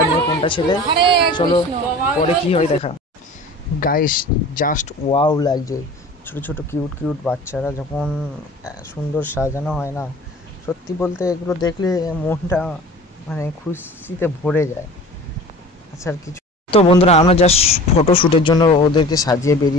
মেয়ে কোনটা ছেলে। চলো পরে কি হয় দেখা। গাইস জাস্ট ওয়াও লাগছে, ছোটো ছোটো কিউট কিউট বাচ্চারা যখন সুন্দর সাজানো হয় না, সত্যি বলতে এগুলো দেখলে মনটা মানে খুশিতে ভরে যায়। আচ্ছা আর কিছু। তো বন্ধুরা, আমরা জাস্ট ফটোশ্যুটের জন্য ওদেরকে সাজিয়ে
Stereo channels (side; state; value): both; normal; correlation 0.41